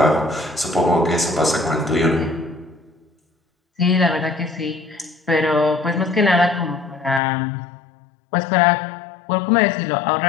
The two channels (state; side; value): drops out; right; at 7.2 s